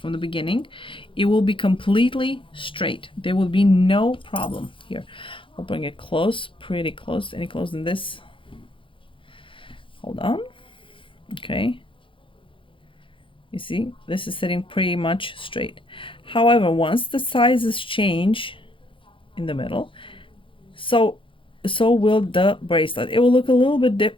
the beginning, it will be completely straight. There will be no problem here. I'll bring it close, pretty close, any closer than this. Hold on. Okay, you see this is sitting pretty much straight. However, once the sizes change in the middle, so will the bracelet. It will look a little bit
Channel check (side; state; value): right; late; 0.25 ms